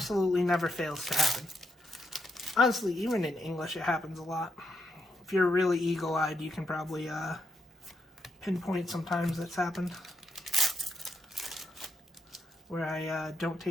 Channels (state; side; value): normal; both; correlation 0.81